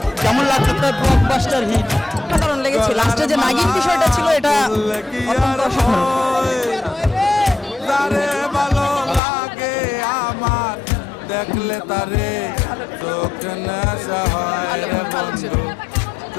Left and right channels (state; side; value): drops out; right; at 9.2 s